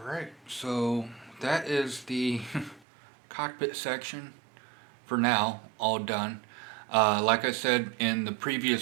so that is the cockpit section for now, all done. Like I said in the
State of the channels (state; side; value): drops out; left; at 2.8 s